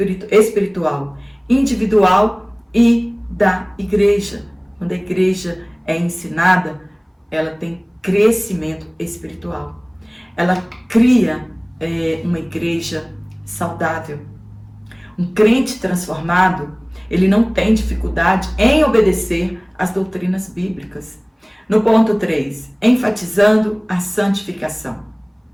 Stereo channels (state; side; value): identical; both; correlation 1.00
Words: espiritual, individual e da igreja. Quando a igreja é ensinada, ela tem crescimento espiritual. Ela cria uma igreja saudável. Um crente transformado, ele não tem dificuldade em obedecer às doutrinas bíblicas. No ponto 3, enfatizando a santificação.